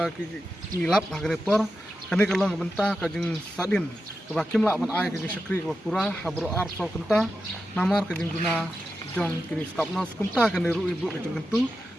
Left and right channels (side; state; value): both; normal; correlation 0.90